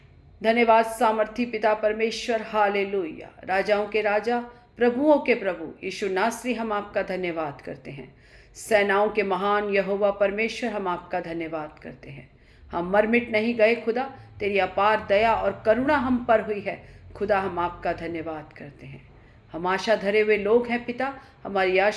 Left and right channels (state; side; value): identical; both; correlation 1.00